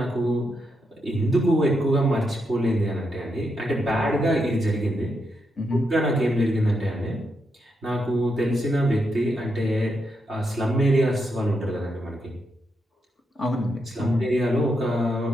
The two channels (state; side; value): normal; both; correlation 0.82